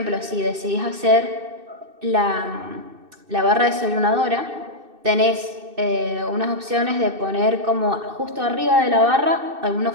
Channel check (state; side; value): late; left; 2.6 ms